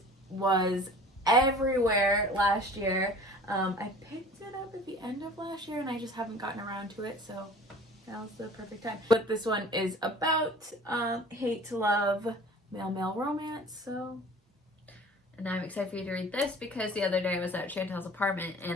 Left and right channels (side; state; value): both; normal; correlation 0.45